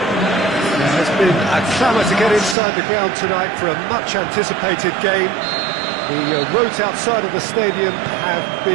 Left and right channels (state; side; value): drops out; left; at 2.6 s